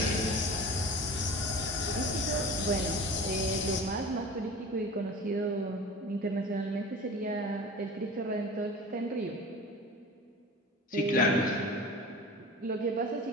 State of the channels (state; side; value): normal; both; correlation 0.37